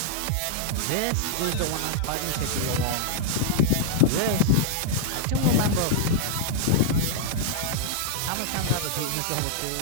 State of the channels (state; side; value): different; both; correlation -0.01